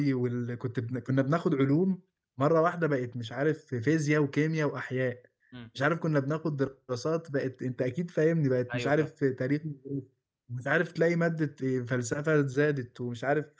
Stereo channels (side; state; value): both; identical; correlation 1.00